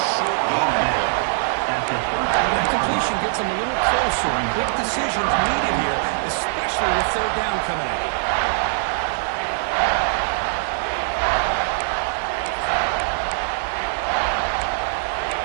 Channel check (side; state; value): left; silent; digital silence